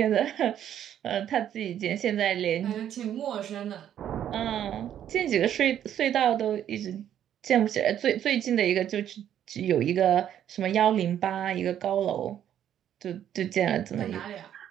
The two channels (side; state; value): left; quieter; 10.3 dB